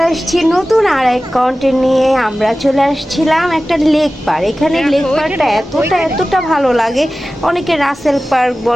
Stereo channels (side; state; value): both; normal; correlation 0.96